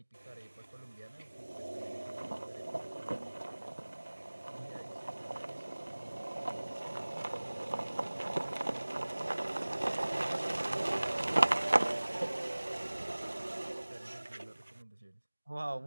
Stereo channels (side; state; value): both; inverted; correlation -1.00